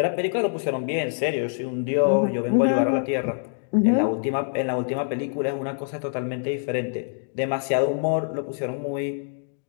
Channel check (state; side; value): silent; right; digital silence